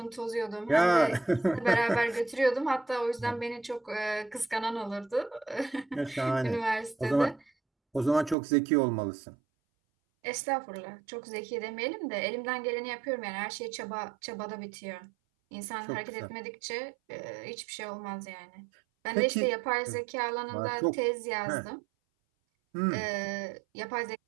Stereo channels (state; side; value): drops out; left; at 8.3 s